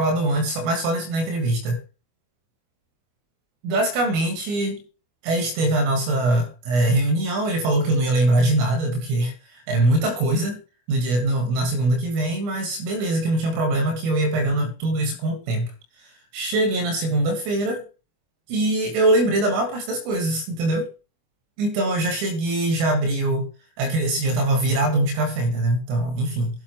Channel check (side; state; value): left; late; 25 ms